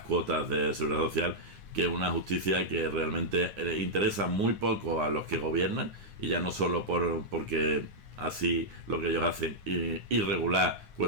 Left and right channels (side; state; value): left; late; 9.7 ms